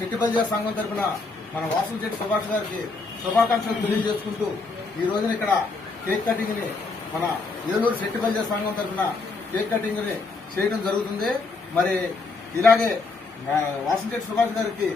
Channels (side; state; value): right; quieter; 3.9 dB